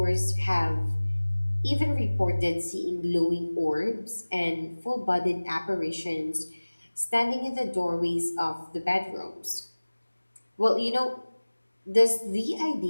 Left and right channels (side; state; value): both; inverted; correlation -1.00